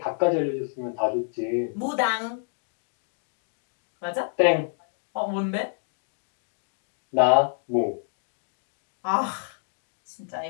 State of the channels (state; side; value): silent; right; digital silence